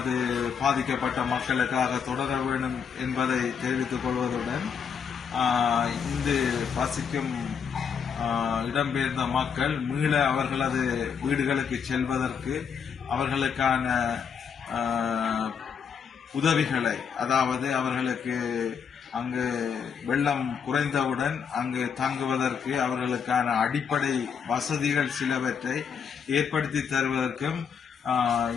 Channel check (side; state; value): right; quieter; 6.9 dB